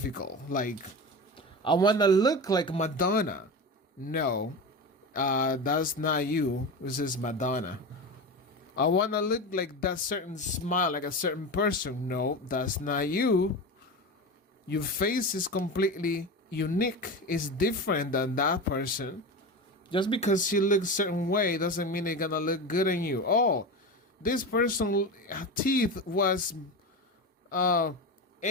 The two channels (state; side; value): normal; both; correlation 0.24